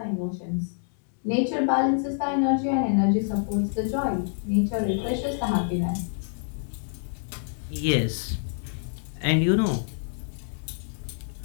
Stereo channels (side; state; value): right; silent; digital silence